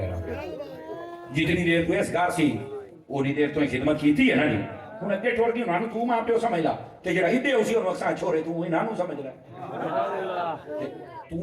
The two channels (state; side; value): identical; both; correlation 1.00